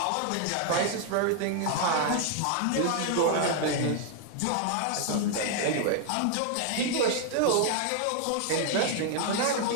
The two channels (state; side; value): different; both; correlation 0.00